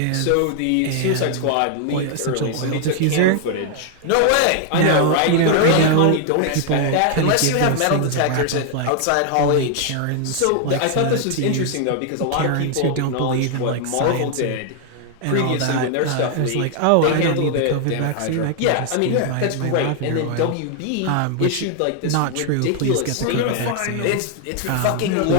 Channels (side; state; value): both; different; correlation 0.00